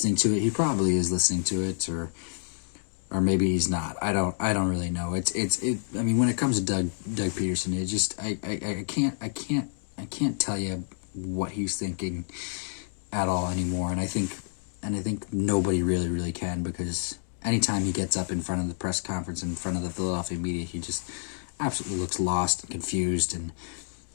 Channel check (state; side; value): silent; right; digital silence